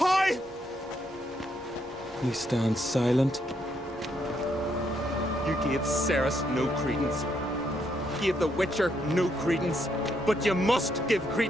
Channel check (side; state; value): right; noise; hum, 30 dB below the sound